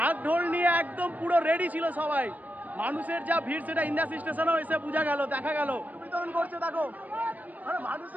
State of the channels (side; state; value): left; late; 0.078 ms